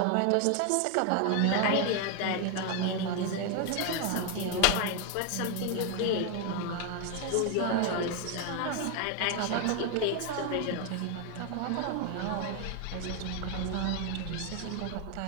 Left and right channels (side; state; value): both; different; correlation 0.01